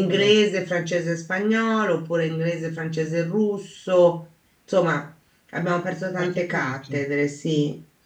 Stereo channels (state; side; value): identical; both; correlation 1.00